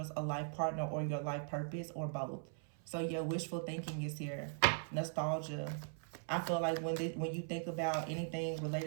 a life partner or your life purpose or both. So yeah, wishful thinking is here. Nostalgia. I feel like when you think about anything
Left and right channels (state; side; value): silent; left; 51 dB below the other